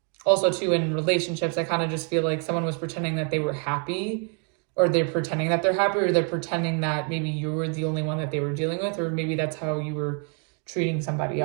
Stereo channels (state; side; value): quieter; left; 38.3 dB